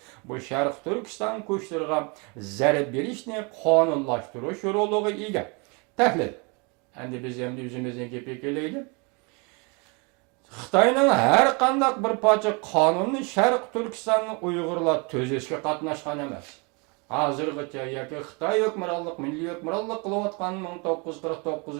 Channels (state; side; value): quieter; left; 31.3 dB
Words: bu Sharq Turkiston kuchlariga zarba berishni qonunlashtirish roliga ega. Tahlil. Endi biz ham o'zimizning gapga kelaylik. Xitoyning har qanday bir parcha qonunni Sharq Turkistonni Uyg'urlar tuzishga qatnashgan emas. Hozirgacha yoki Xitoy hukmronlik, milliy hukmronlik qilayotgan